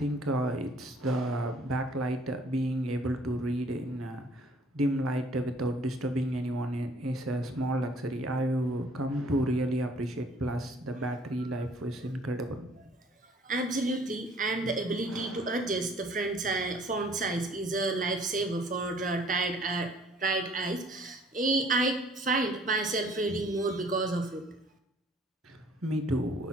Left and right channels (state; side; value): normal; both; correlation 0.57